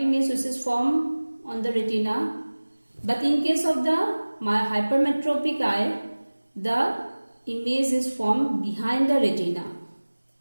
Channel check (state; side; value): inverted; both; correlation -1.00